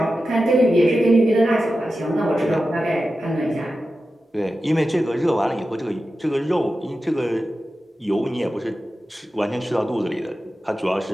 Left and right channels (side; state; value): both; normal; correlation 0.92